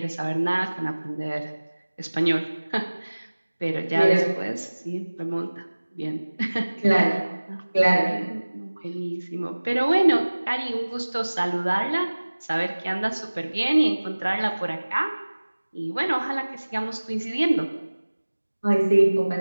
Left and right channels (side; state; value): both; inverted; correlation -1.00